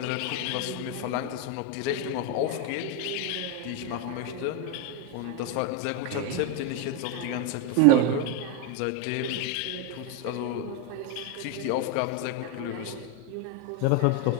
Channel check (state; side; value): different; both; correlation 0.01